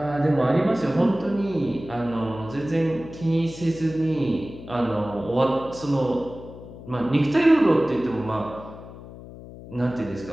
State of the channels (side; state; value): left; noise; hum, 15 dB below the sound